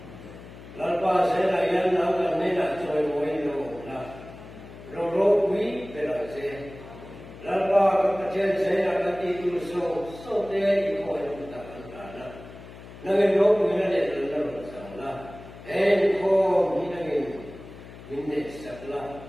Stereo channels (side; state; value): left; noise; hum, 16 dB below the sound